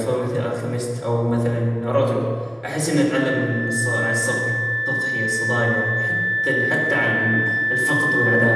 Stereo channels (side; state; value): both; identical; correlation 1.00